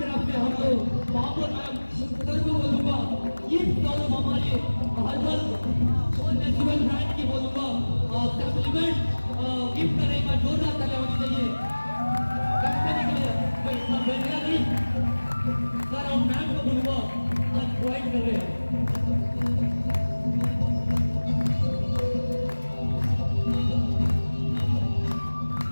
से हम लोग महापौर मैम सर को बोलूंगा, गिफ्ट और हमारे हर्बल और नेचुरल ब्रांड की बोलूँगा सप्लीमेंट गिफ्ट करने का जोरदार तालियां होनी चाहिए कंपनी के लिए। मैं इतना बेहतरीन नहीं सर, हम मैम को बोलूँगा आज प्रोवाइड कर रहे हैं।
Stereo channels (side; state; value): both; inverted; correlation -1.00